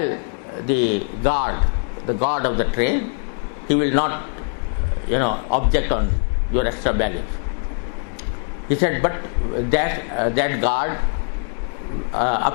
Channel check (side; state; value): right; silent; digital silence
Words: the guard of the train. He will not, object on your extra baggage. He said, but that guard,